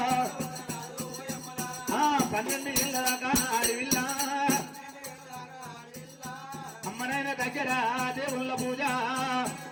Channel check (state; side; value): identical; both; correlation 1.00